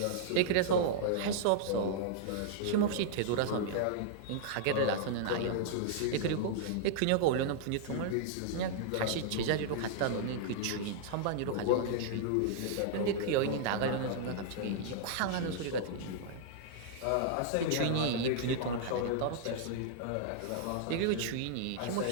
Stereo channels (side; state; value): both; different; correlation -0.01